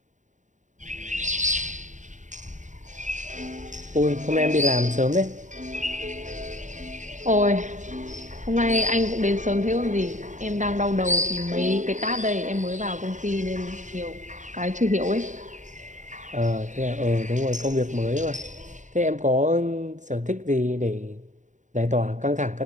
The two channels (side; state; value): left; late; 0.36 ms